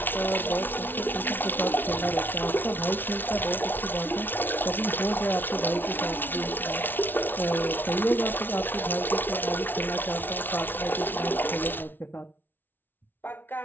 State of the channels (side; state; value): right; late; 0.095 ms